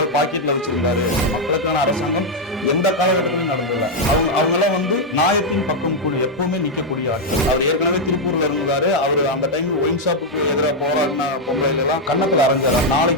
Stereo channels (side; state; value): both; normal; correlation 0.00